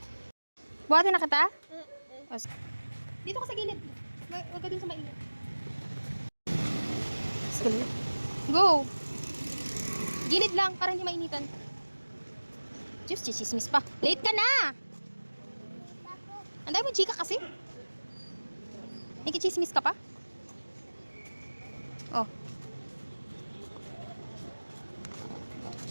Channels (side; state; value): both; inverted; correlation -1.00